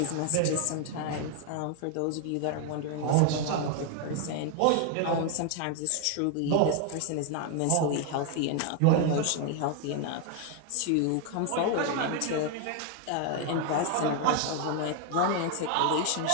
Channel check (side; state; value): both; different; correlation 0.01